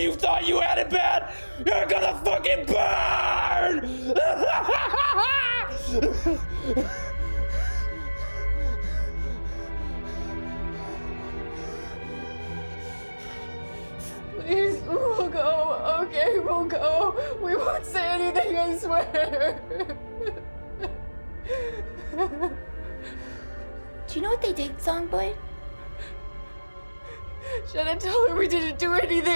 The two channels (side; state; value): both; inverted; correlation -1.00